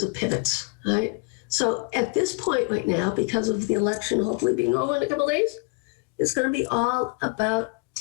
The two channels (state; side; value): quieter; right; 30.1 dB